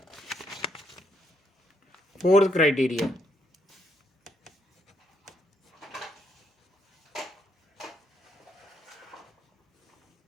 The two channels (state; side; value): normal; both; correlation 0.74